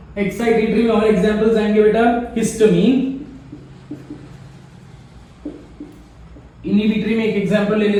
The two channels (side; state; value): both; identical; correlation 1.00